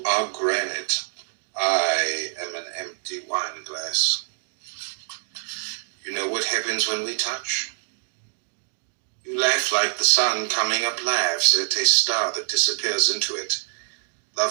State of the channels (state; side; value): silent; left; digital silence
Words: are granite. I am an empty wine glass. You know what happens when we touch? You laugh like the sun coming up laughs at a star that disappears into it.